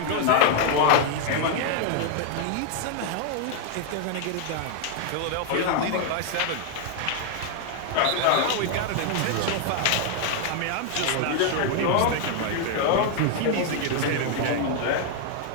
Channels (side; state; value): both; different; correlation 0.00